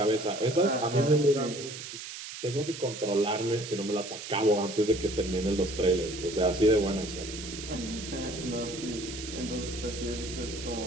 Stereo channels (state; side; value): noise; right; hiss, 10 dB below the sound